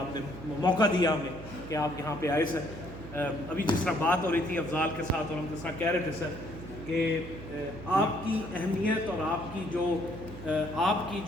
نے موقع دیا ہمیں کہ آپ یہاں پہ آئے سر. ابھی جس طرح بات ہو رہی تھی افضال کے ساتھ اور ہم جس طرح کہہ رہے تھے سر کہ آپ کی اہمیت اور آپ کی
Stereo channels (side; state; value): right; noise; hum, 13 dB below the sound